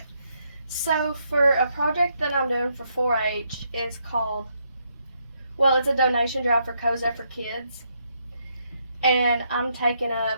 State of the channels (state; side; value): inverted; both; correlation -0.76